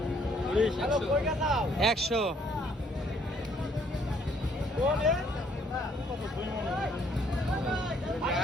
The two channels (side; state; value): both; normal; correlation 0.65